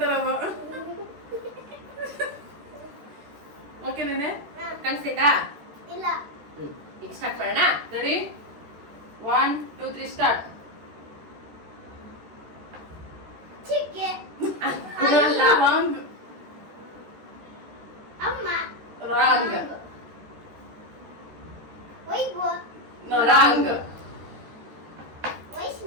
ಓಕೆ ನೀನೆ ಕಾಣಿಸ್ತೈತಾ? ಇಲ್ಲ ಈಗ ಸ್ಟಾರ್ಟ್ ಮಾಡೋಣ. Ready 1 2 3 start. ಚಿಕ್ಕೆ ರಾಂಗ್. ಅಮ್ಮ wrong. Vaibhav wrong.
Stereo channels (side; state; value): left; late; 13 ms